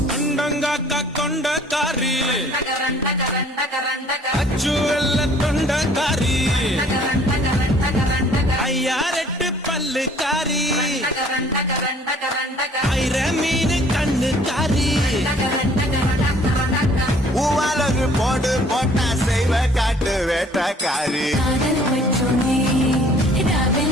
கொண்டங்காக்கா கொண்டக்காரி அச்சு வெள்ள தொண்டக்காரி ஐயாரெட்டு பல்லுக்காரி ஐர மீன் கண்ணுக்காரி பூவாலொரு போடு போட்டா செய்வ காட்டு வேட்டக்காரி காதல் பற்றோனே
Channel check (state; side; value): normal; both; correlation 0.56